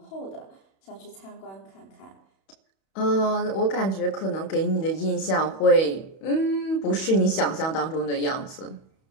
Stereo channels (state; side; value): late; right; 31 ms